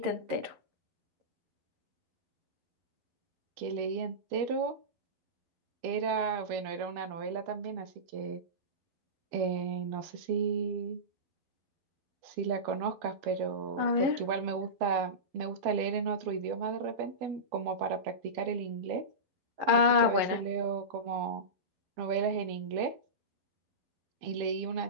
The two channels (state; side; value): late; left; 12 ms